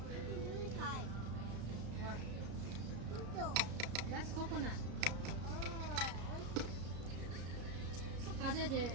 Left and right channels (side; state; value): left; late; 33 ms